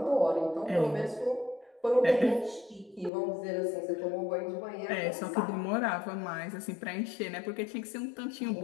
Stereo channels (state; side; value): drops out; right; at 3.1 s